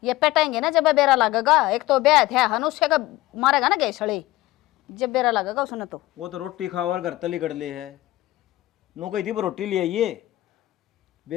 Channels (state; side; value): quieter; right; 17.3 dB